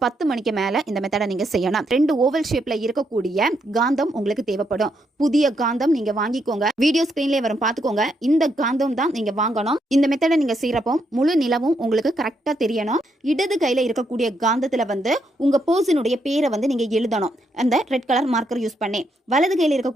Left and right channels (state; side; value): normal; both; correlation 0.78